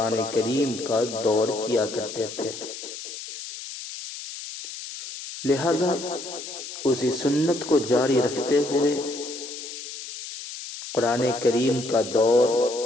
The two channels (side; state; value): left; noise; hiss, 10 dB below the sound